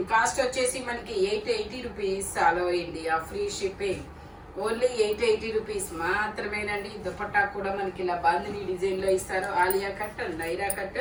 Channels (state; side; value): identical; both; correlation 1.00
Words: కాస్ట్ వచ్చేసి మనకి 880 rupees, all over India free shipping. Only 880 rupees మాత్రమేనండి. దుపట్టా కూడా మనకి ఇలా బాందిని డిజైన్ లో ఇస్తారు. Alia cut, Naira cut,